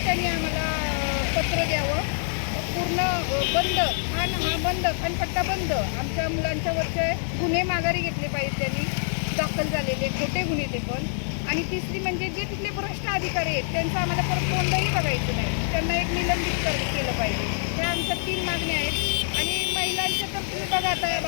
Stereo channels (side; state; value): right; silent; digital silence